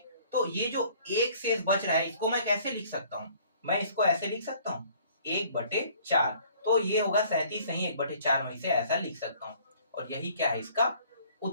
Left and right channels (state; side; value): inverted; both; correlation -0.56